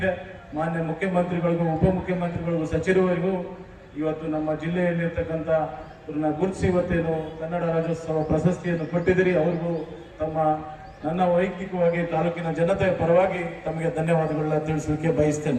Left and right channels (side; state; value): both; identical; correlation 1.00